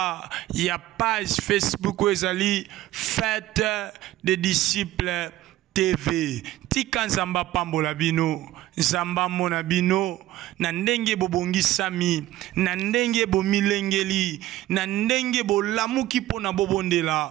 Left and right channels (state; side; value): quieter; left; 15.0 dB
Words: il y a page Facebook où Fête des disciples TV. Tika Nzamba pambola bino, Nzamba mona bino, na ndenge bobongi sami, na ndenge bomilengeli, na ndenge bolamuki pona